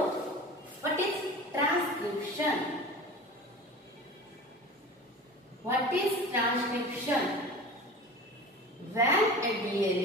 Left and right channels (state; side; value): normal; both; correlation 0.36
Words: what is transcription. What is transcription? When a